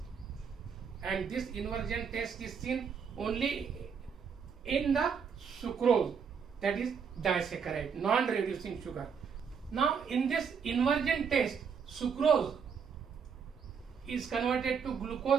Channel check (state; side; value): quieter; left; 6.5 dB